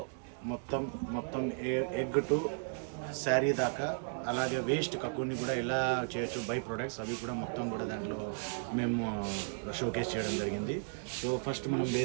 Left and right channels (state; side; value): silent; left; digital silence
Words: మొత్తం ఎగ్ టు శారీ దాకా, అలాగే వేస్ట్ కక్కుని కూడా ఎలా చేయొచ్చు, బై ప్రొడక్ట్స్ అవి కూడా మొత్తం కూడా దాంట్లో మేము షోకేస్ చేయడం జరిగింది. సో ఫస్ట్ మనం